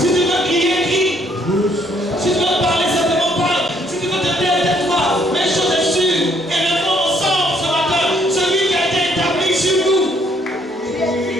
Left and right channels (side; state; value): both; normal; correlation 0.67